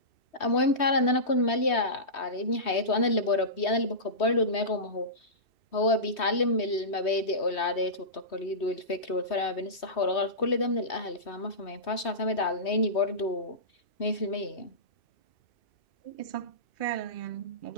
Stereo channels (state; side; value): late; right; 3.2 ms